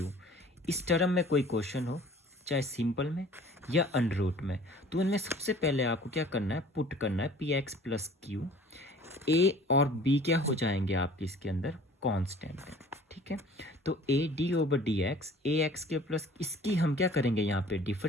इस टर्म में कोई क्वेश्चन हो, चाहे सिंपल में या अंडर रूट में, तो उनमें सबसे पहले आपको क्या करना है, पुट करना है पी एक्स प्लस क्यू। ए और बी क्या हो जाएंगे आपके इसके अंदर, कांस्टेंट है, ठीक है। तो A D over d x, A x के प्लस इसकी हम क्या करेंगे यहाँ पे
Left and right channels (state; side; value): normal; both; correlation 0.48